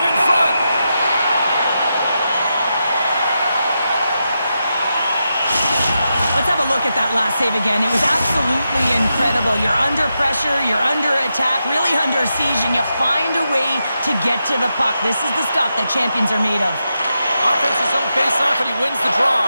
in front. Let's have a look at that last save again. It was absolutely incredible. You're under pressure, you're under attack, really under siege, and you find a way to get to the puck. This is the stuff that champions are made of. Offensive zone face-off, and he wins the draw.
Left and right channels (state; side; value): inverted; both; correlation -0.87